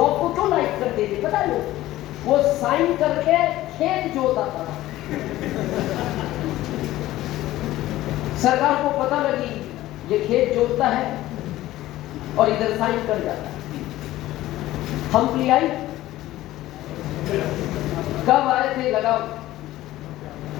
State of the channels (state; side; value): quieter; right; 15.7 dB